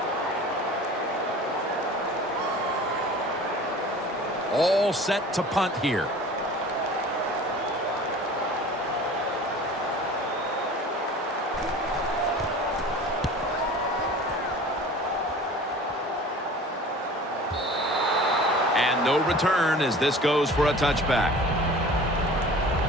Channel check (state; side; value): normal; both; correlation 0.42